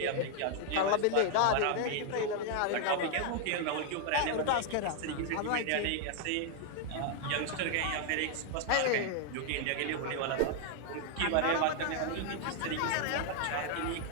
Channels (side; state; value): both; different; correlation 0.00